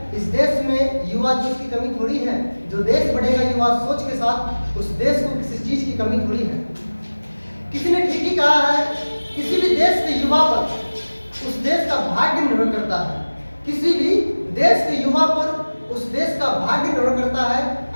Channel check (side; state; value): both; inverted; correlation -1.00